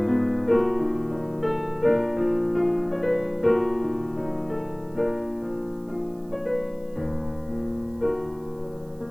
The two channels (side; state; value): right; noise; hiss, 30 dB below the sound